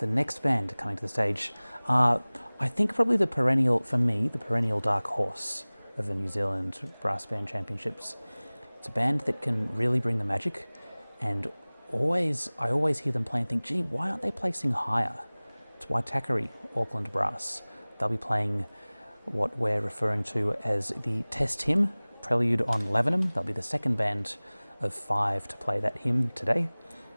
next band coming to the stage are, I think, probably the perennial dark horse of the New Zealand Brass Band Championships. It's a band that can really bring the magic, and I always hear them play and think, gee, why aren't they placing higher? It's Waitakere Auckland Brass. They'll be playing what we're referring to as the test hymn, Prelude on Lavenham. They'll be the second band of 5 to play that hymn today,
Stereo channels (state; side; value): inverted; both; correlation -1.00